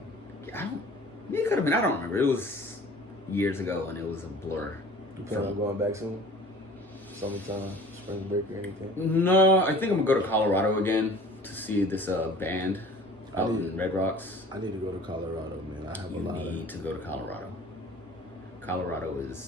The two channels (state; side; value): normal; both; correlation 0.46